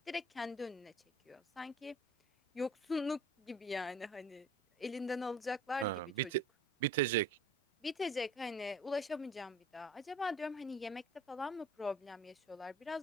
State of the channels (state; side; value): normal; both; correlation 0.47